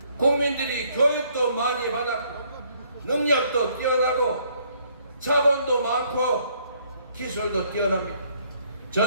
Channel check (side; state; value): both; inverted; correlation -0.66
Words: 국민들이 교육도 많이 받았고 능력도 뛰어나고 자본도 많고 기술도 뛰어납니다.